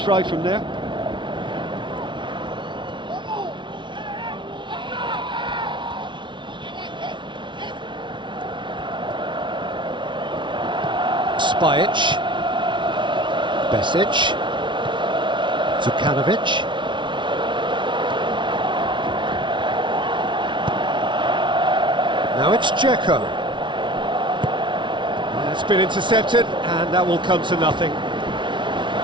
from there. Spajic. Besic. Zukanovic. Now it's Dzeko. That's been intercepted, and that will come to nothing.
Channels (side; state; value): left; late; 0.24 ms